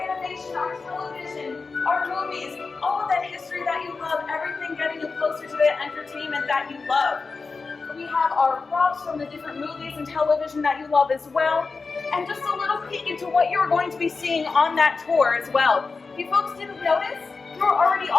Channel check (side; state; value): right; quieter; 4.3 dB